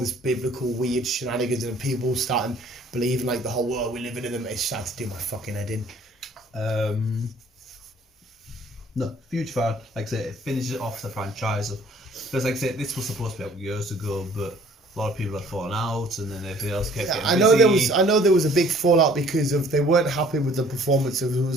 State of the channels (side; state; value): both; normal; correlation 0.55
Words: biblical weird shenanigans and people starting believing like the whole world we're living in them, it started to do my fucking head in. No, huge fan. Like I say, it finishes off the franchise. Because like I say, this was supposed to be out years ago, but a lot of people had fallen out, and then everything else kept getting busy. I know there was a big fallout because of they weren't happy with the performance of